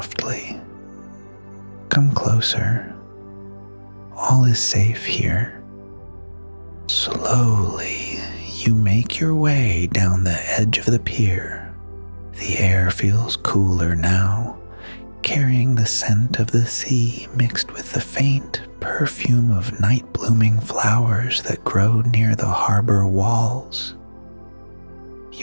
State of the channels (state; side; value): inverted; both; correlation -1.00